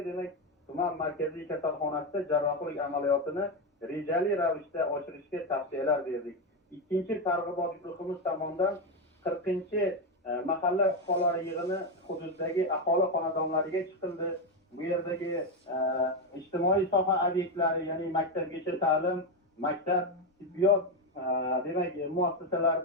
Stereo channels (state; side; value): normal; both; correlation 0.09